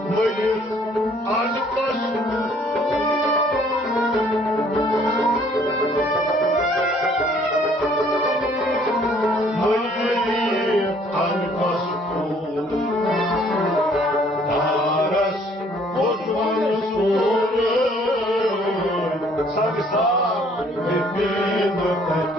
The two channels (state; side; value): normal; both; correlation 0.60